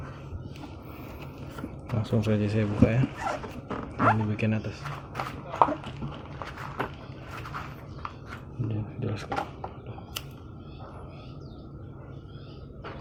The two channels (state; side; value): identical; both; correlation 1.00